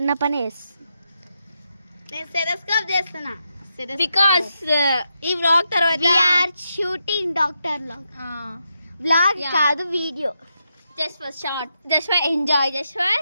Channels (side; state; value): both; inverted; correlation -0.84